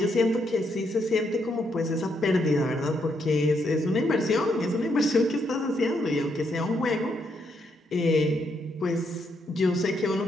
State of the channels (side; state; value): both; normal; correlation 0.77